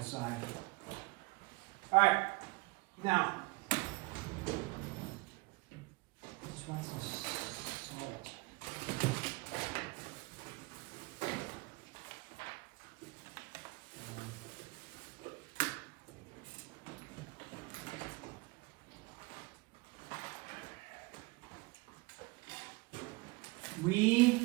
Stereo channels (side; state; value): left; quieter; 24.9 dB